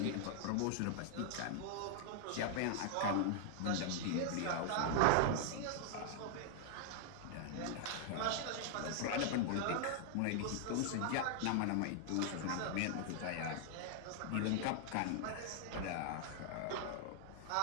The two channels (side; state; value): both; different; correlation 0.00